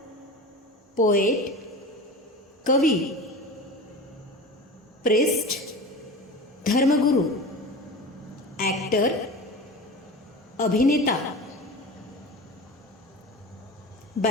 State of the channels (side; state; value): both; normal; correlation 0.32